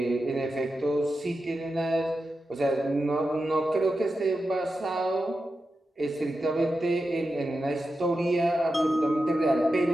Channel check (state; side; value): normal; both; correlation 0.90